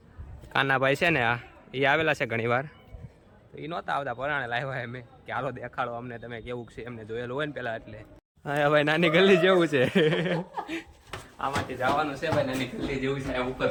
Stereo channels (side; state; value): both; identical; correlation 1.00